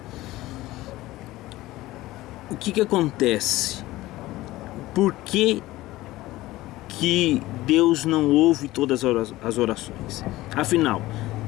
O que acontece? Por que Deus não ouve todas as orações? Afinal,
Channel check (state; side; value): quieter; right; 17.5 dB